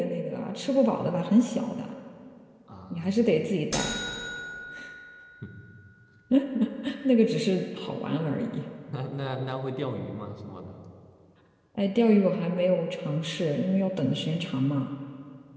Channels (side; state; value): both; identical; correlation 1.00